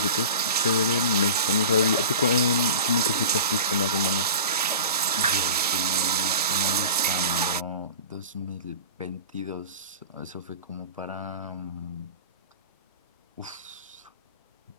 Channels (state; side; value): inverted; both; correlation -0.35